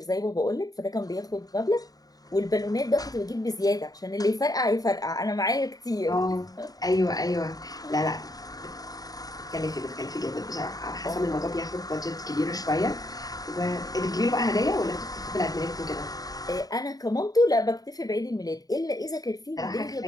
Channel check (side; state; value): right; late; 0.18 ms